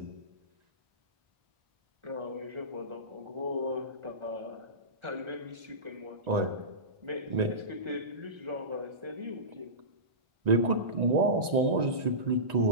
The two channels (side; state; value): left; late; 1.9 ms